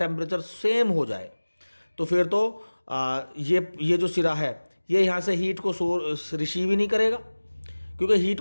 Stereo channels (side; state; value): both; inverted; correlation -1.00